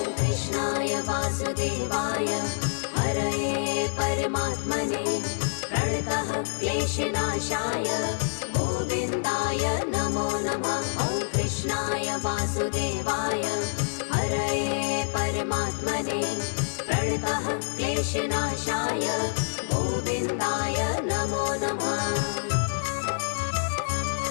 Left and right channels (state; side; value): silent; right; 60 dB below the other